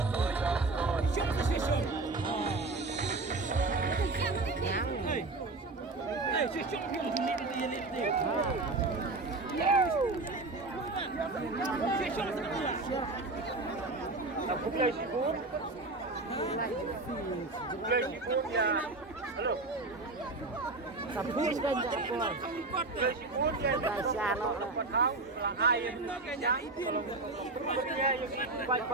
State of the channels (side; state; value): left; quieter; 3.3 dB